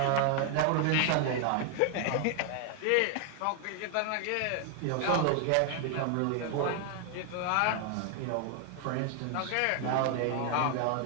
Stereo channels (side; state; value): both; different; correlation 0.00